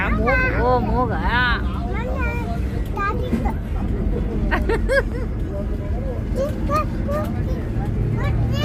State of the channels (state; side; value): identical; both; correlation 1.00